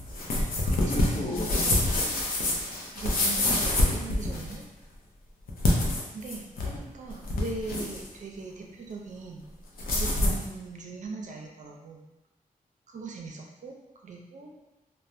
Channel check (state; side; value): normal; both; correlation 0.57